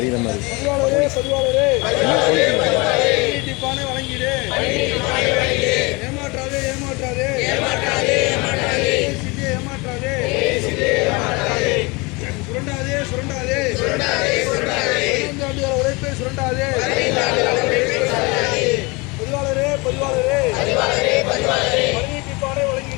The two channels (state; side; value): quieter; right; 26.5 dB